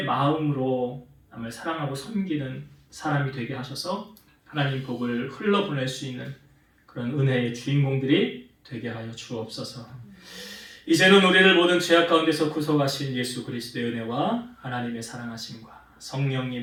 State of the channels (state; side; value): identical; both; correlation 1.00